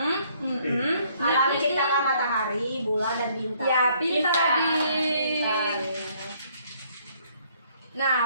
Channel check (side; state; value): both; inverted; correlation -0.65